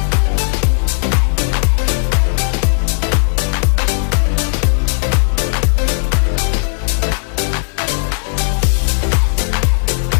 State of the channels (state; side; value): silent; right; digital silence